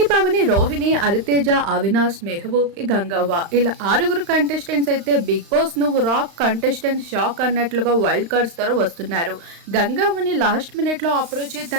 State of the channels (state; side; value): late; left; 35 ms